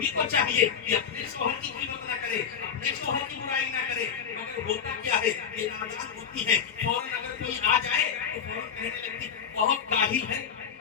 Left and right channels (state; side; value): quieter; right; 7.3 dB